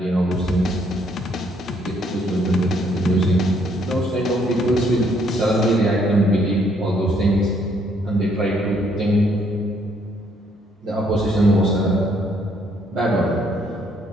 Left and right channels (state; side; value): normal; both; correlation 0.68